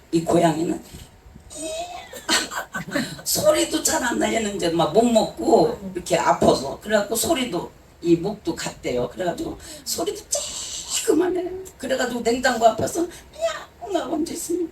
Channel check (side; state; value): both; identical; correlation 1.00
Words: 이 고양이는 소리도 잘 안 나. 얘는 이제 막 못 먹고 이렇게 아파서. 그래갖고 소리도 이 목도 갔대요. 그래가지고 소리도 쬐그만해. 그래가지고 냉장고 앞에서 야 언제 있으면